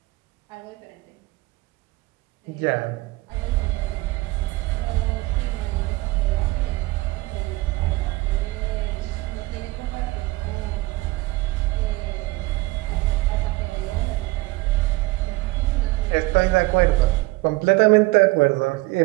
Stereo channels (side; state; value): left; quieter; 21.0 dB